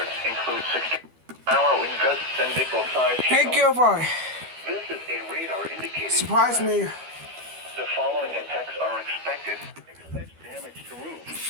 include 60-mile wind gusts and nickel-sized Hey, hail. kjy80. This is a radar indicated Surprise threat. me. The following impacts are expected. Expect damage to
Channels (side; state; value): left; late; 12 ms